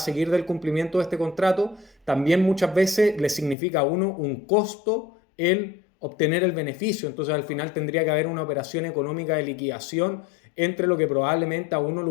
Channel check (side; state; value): right; drops out; at 3.6 s